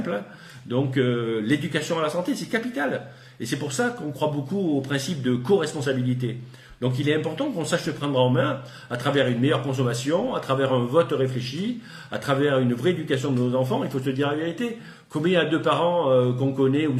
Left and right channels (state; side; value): identical; both; correlation 1.00